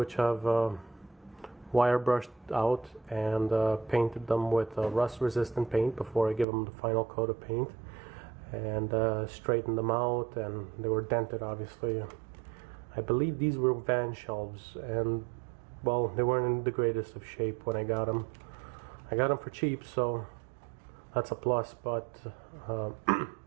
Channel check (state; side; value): drops out; left; at 6.5 s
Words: I've wire brushed out and painted them with rust resistant paint before I give them the final coat of paint, and straightened them out, and they were dented obviously. I believe these were van shelves, and well, they weren't in the greatest of shape when I got them. I got them for cheap, so that's a plus, but